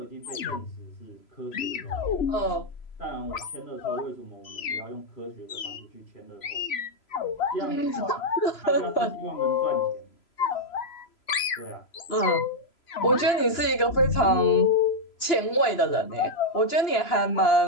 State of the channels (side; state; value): right; late; 3.0 ms